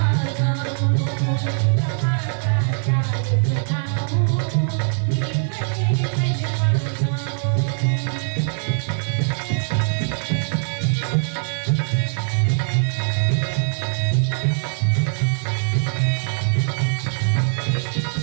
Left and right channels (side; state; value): left; silent; digital silence